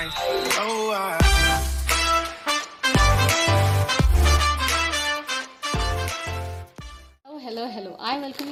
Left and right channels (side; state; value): both; identical; correlation 1.00